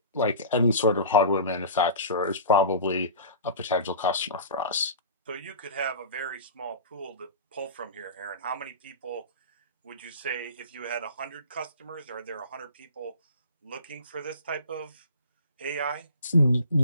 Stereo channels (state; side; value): inverted; both; correlation -0.37